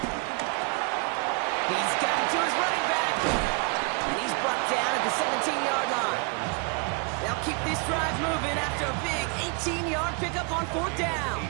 He's got it to his running back. And he's brought down at the 17-yard line. They'll keep this drive moving after a big 18-yard pickup on 4th down.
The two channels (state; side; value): quieter; left; 33.6 dB